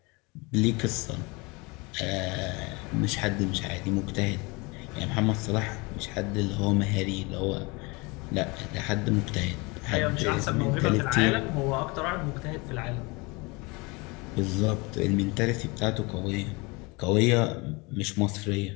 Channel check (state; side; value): quieter; right; 26.6 dB